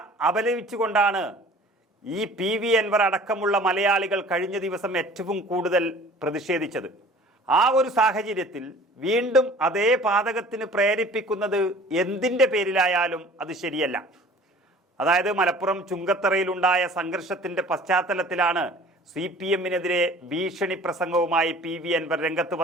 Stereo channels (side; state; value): both; normal; correlation 0.47